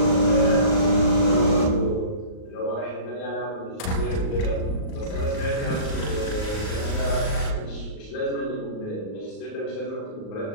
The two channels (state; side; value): late; right; 38 ms